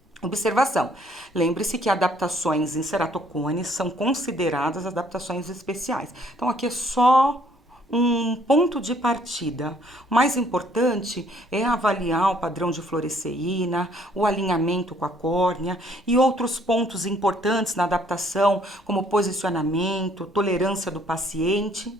Observação, lembre-se que adaptações em ceratocones são consideradas adaptações especiais. Então, aqui é só um ponto de partida. O mais importante é avaliar o padrão de fluoresceína, o alinhamento com a córnea e outros pontos importantes na adaptação, como posicionamento, tolerância do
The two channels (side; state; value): both; normal; correlation 0.63